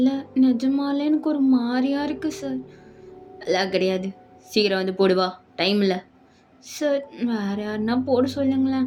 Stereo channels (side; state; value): both; identical; correlation 1.00